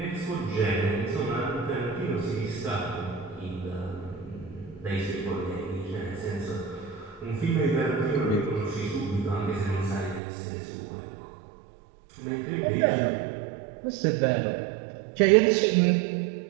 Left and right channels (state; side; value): drops out; left; at 10.2 s